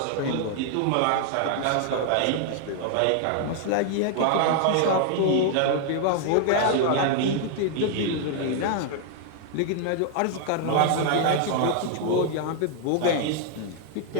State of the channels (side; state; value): both; different; correlation 0.00